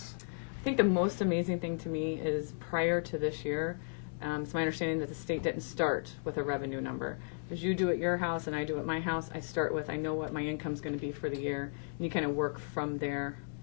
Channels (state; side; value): silent; right; digital silence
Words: I think the most amazing thing to me is prior to this year, it's my understanding that the state didn't start with a revenue number. As you do at your house and I do at my house, I start with, I know what my income's going to be for the year, and you kind of work from there.